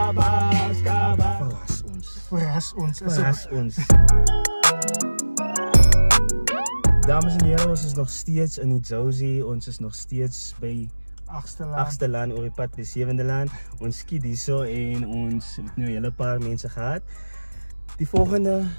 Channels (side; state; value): both; inverted; correlation -1.00